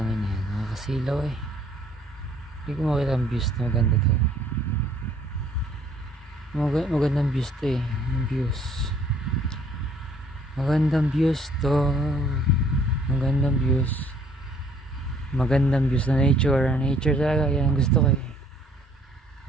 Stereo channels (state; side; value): normal; both; correlation 0.61